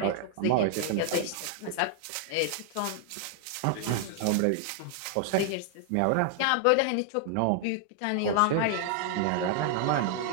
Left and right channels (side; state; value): both; different; correlation 0.00